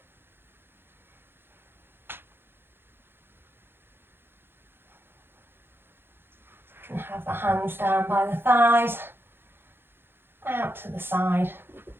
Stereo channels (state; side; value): late; left; 0.10 ms